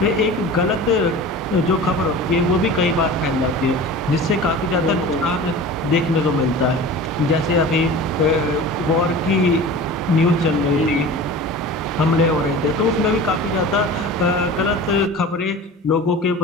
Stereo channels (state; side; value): normal; both; correlation 0.37